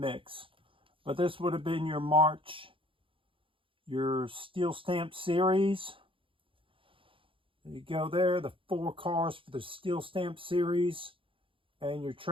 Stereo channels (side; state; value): left; late; 0.25 ms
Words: But this would have been your March, your steel stamp series. There you go there, the 4 cars for the steel stamp series. And your